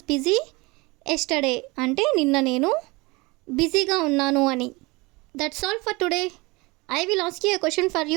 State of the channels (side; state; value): left; quieter; 24.6 dB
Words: busy yesterday అంటే నిన్న నేను బిజీగా ఉన్నాను అని. That's all for today. I will ask you a question for